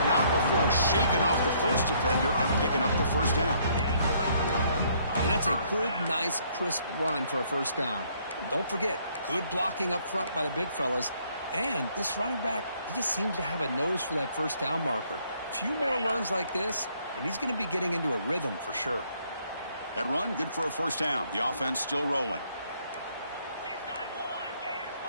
not before shaking off the first defender and picking up the first down. And that's a good, nice, crisp run for a first down. Don't forget, good blocking up front by the big fellas. And this running back, he just seems to have a nose for that first down marker. A few more runs like this, and he's going to be getting into a rhythm for sure. That run, good for a first down. The offense still rolling.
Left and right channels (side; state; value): both; inverted; correlation -0.66